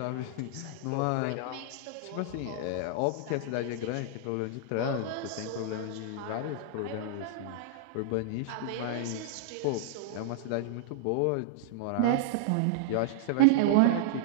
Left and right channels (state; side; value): different; both; correlation -0.01